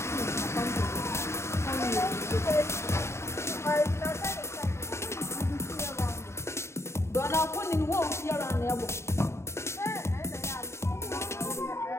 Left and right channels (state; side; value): late; right; 0.13 ms